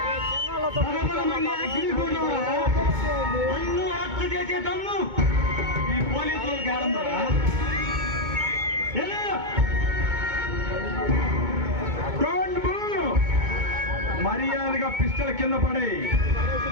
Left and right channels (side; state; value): left; late; 2.2 ms